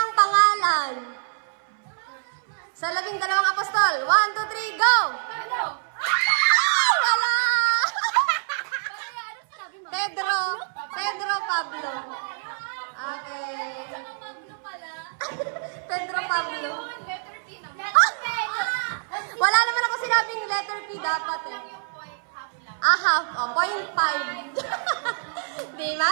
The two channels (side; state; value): left; silent; 61 dB below the other